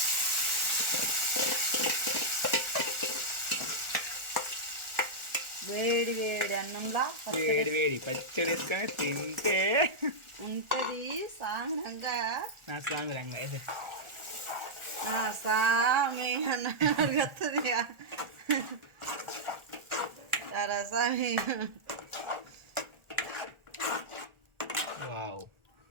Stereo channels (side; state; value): left; late; 1.4 ms